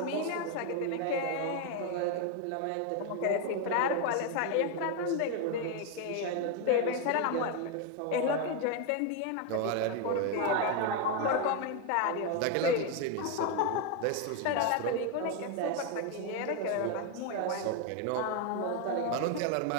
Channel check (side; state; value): both; different; correlation 0.01